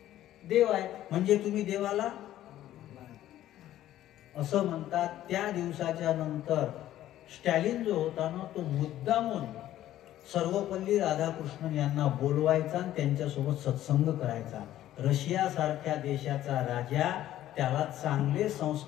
देव आहे. म्हणजे तुम्ही देवाला असं म्हणतात. त्या दिवसाच्या नंतर स्टॅलिन जो होता ना, तो मुद्दामून सर्वपल्ली राधाकृष्णन यांना बोलवायचा आणि त्यांच्यासोबत सत्संग करायचा. रशिया सारख्या देशाचा राजा, त्याला चांगले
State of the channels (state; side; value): quieter; right; 13.1 dB